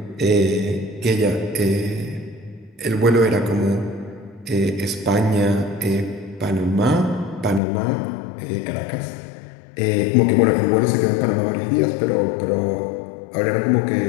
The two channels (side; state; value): right; drops out; at 7.6 s